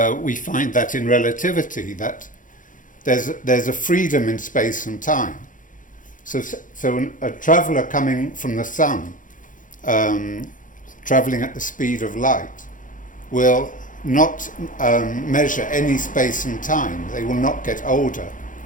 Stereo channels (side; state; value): right; late; 0.38 ms